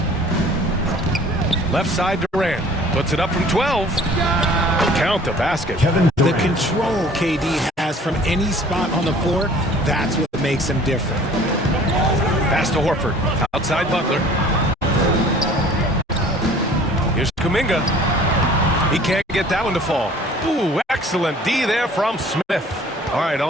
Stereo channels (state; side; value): normal; both; correlation 0.50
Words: Left side Durant. Puts it up from 12. Count the basket. The control KD has from any spot on the floor, that's what makes him different. Pass to Horford. Outside Butler. Here's Kuminga. He can't get that one to fall. Ooh, excellent D there from Smith. All right,